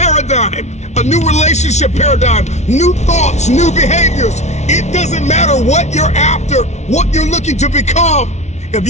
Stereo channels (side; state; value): right; late; 0.32 ms